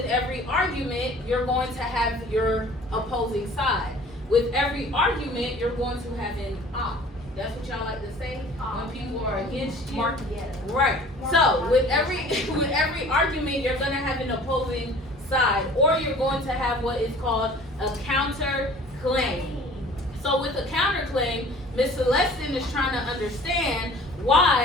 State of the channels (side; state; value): both; normal; correlation 0.48